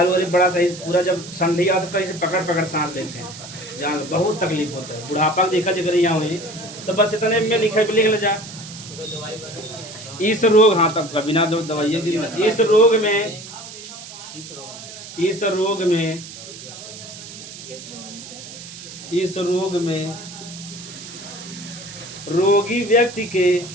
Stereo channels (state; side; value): noise; right; hiss, 14 dB below the sound